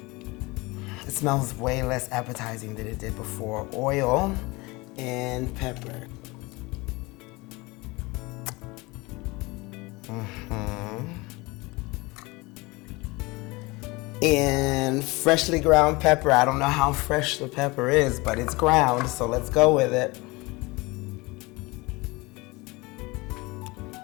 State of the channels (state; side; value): quieter; right; 23.9 dB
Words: It smells way less appetizing than it did before. Oil and pepper. And freshly ground pepper. I don't know how fresh the pepper is, but it's ground, so let's go with it.